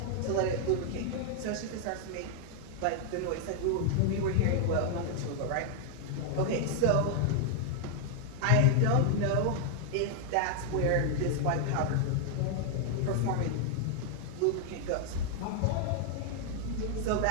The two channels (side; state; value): both; different; correlation 0.00